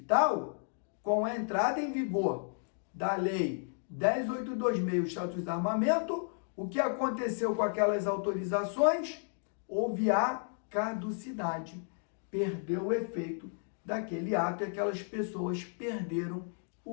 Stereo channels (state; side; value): silent; right; 56 dB below the other